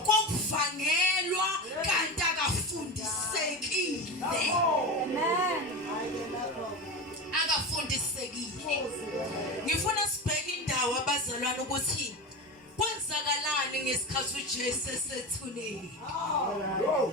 kokuvangelwa kanti akafundisekile. Akafundisekile. Ngifuna sibheke indawo abazalwane ukuthi kwenzakalani ngesikhathi uJesu esethuneni. Oh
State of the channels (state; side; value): normal; both; correlation 0.24